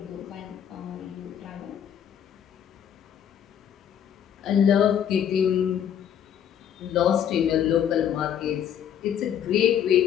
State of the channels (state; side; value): quieter; right; 9.1 dB